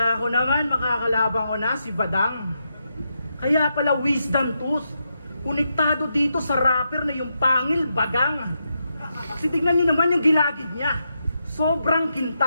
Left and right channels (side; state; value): both; inverted; correlation -0.84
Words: ko naman makakalaban ko na si Badang. Kaya pala wisdom tools, konektado dito sa rapper na yung pangil bagang. Kasi tignan nyo naman yung gilagid niya. Sobrang